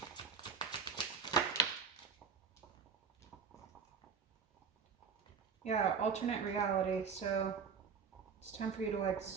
Yeah, alternate reality, so it's time for you to like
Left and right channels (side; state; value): left; quieter; 6.1 dB